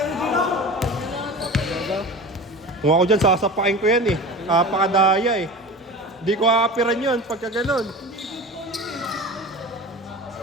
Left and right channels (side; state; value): both; normal; correlation 0.33